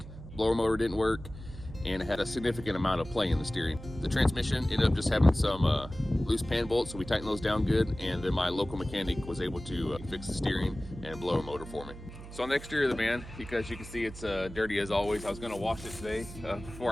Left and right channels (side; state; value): right; noise; hum, 14 dB below the sound